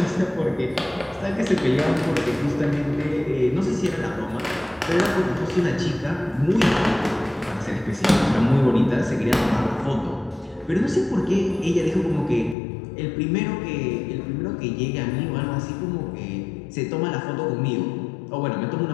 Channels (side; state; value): right; drops out; at 12.6 s